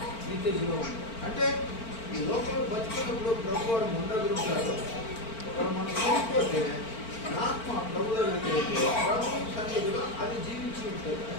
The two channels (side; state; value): right; late; 4.4 ms